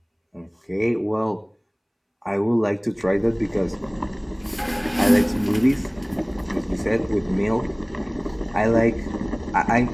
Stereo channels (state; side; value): identical; both; correlation 1.00